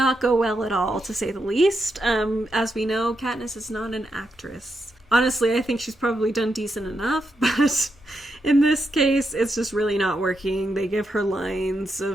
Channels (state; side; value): normal; both; correlation 0.84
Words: go well at all, to say the least. As we know, Katniss is not an actress. Honestly, I think she's probably done decent enough, but in this case, it's just really not working. They give her lines